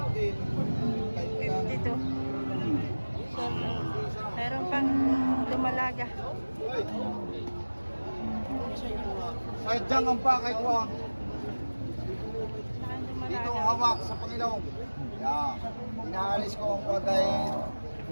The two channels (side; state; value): both; inverted; correlation -1.00